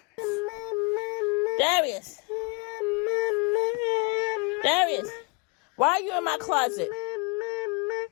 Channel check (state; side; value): quieter; right; 32.4 dB